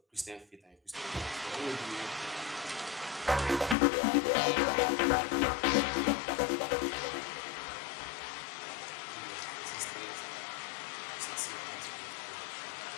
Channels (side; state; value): right; drops out; at 3.8 s